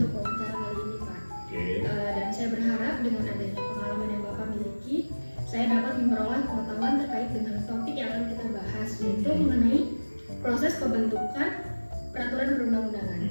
wawancara kali ini Pak. Dan saya berharap dengan adanya pengalaman yang Bapak miliki, saya dapat memperoleh pengetahuan terkait dengan topik yang akan kita bahas, yaitu mengenai proses pembentukan peraturan perundang-undangan.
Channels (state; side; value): inverted; both; correlation -1.00